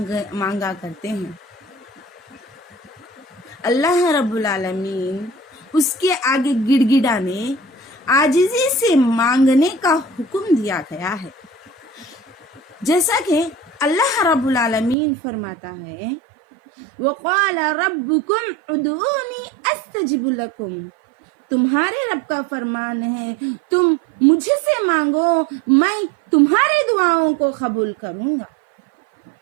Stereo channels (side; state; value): left; drops out; at 15.0 s